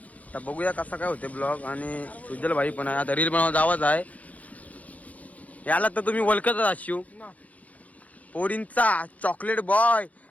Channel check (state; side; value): late; right; 0.071 ms